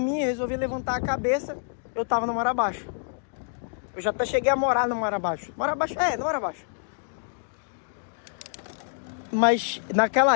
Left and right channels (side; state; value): right; silent; digital silence